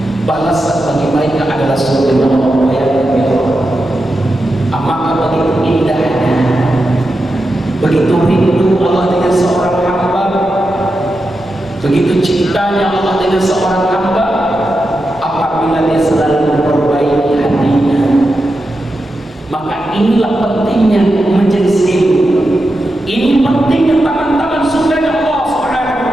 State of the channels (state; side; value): normal; both; correlation 0.89